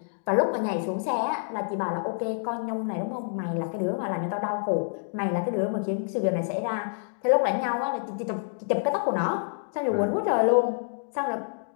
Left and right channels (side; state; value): right; silent; digital silence